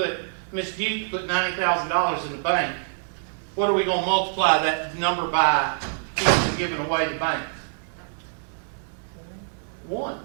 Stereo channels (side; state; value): left; silent; digital silence